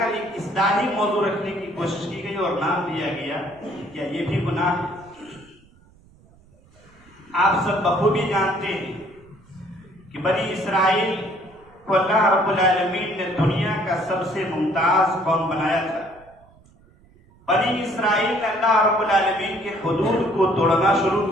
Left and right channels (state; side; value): noise; right; rumble, 28 dB below the sound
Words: ایک اصلاحی موضوع رکھنے کی کوشش کی گئی اور نام دیا گیا کیا یہ بھی گناہ ہے؟ آپ سب بخوبی جانتے ہیں کہ بنی اسرائیل کو اللہ رب العالمین نے دنیا کا سب سے ممتاز قوم بنایا تھا۔ بنی اسرائیل نے اللہ رب العالمین کے حدود کو توڑنا شروع